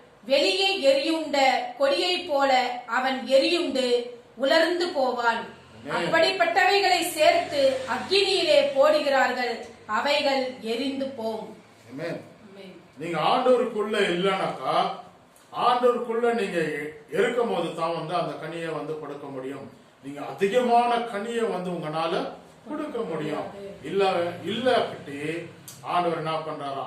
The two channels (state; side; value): identical; both; correlation 1.00